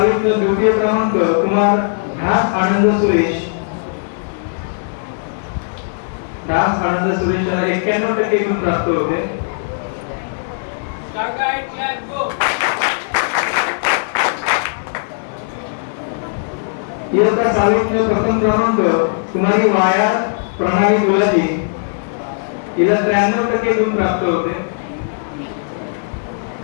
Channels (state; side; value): silent; right; digital silence